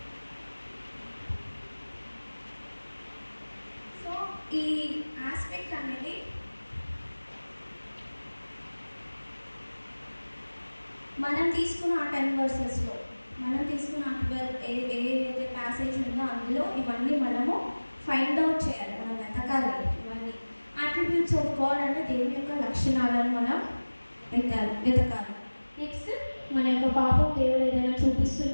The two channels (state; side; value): inverted; both; correlation -1.00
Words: So ఈ aspect అనేది మనం తీసుకున్న ఆ 10 వర్సెస్లో, మనం తీసుకున్న 12 ఏదైతే passage ఉందో అందులో ఇవన్నీ మనము ఫైండ్ అవుట్ చేయాలి, మనం వెతకాలి. ఇవన్నీ అట్రిబ్యూట్స్ ఆఫ్ గాడ్ అంటే దేవుని యొక్క లక్షణాలను మనం వెతకాలి. నెక్స్ట్ మన యొక్క పాపం దేవుడు ఏదైనా